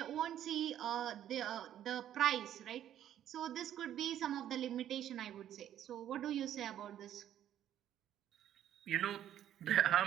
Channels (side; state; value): left; quieter; 11.1 dB